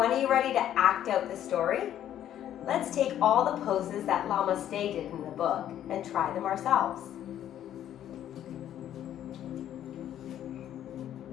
are you ready to act out the story? Let's take all the poses that Llamaste did in the book and try them ourselves.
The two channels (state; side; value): quieter; right; 11.1 dB